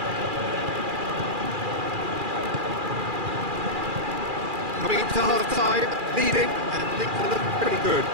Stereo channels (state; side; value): late; left; 2.4 ms